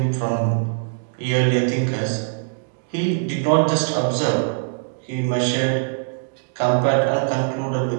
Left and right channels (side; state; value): left; silent; digital silence